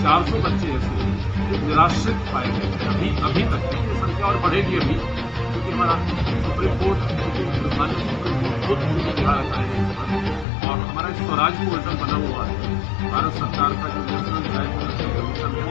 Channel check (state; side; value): drops out; right; at 10.5 s